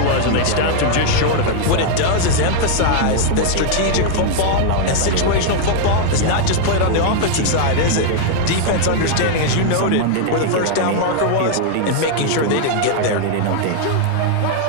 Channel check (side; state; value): both; different; correlation 0.00